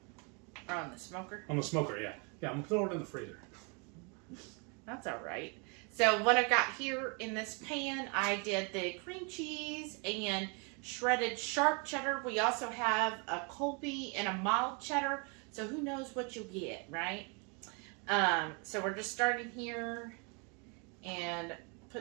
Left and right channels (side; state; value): left; quieter; 34.1 dB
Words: Or on the smoker? On the smoker, yeah. Yeah, I'm going to throw it in the freezer. That's all right. So what I got here in this pan, I did the cream cheese and shredded sharp cheddar. We also have a Colby and a mild cheddar. So who knows what you'll get, right? So we're just starting here and